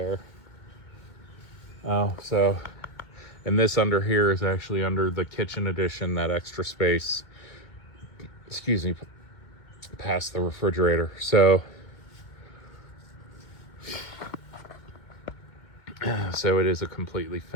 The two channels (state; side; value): late; right; 2.2 ms